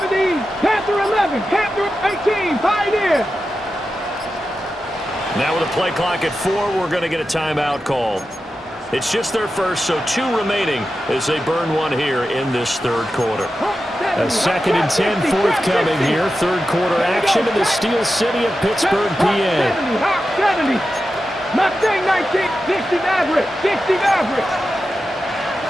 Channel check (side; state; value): both; normal; correlation 0.91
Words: Panther 11, Panther 18, Pioneer. Now with a play clock at 4, we're going to get a timeout call. It's just their first, so 2 remaining as they burn one here in this third quarter. A 2nd and 10 forthcoming here. Third quarter action in the Steel City of Pittsburgh, PA. 70, Mustang 19, 60 Maverick, 60 Maverick.